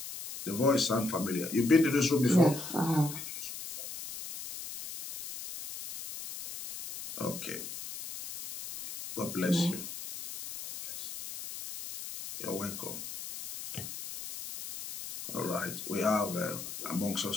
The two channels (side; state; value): left; noise; hiss, 9 dB below the sound